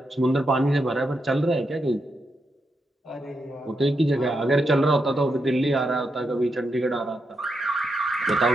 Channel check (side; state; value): both; normal; correlation 0.84